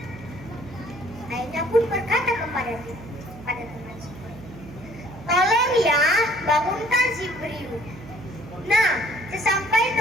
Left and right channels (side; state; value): right; noise; hum, 16 dB below the sound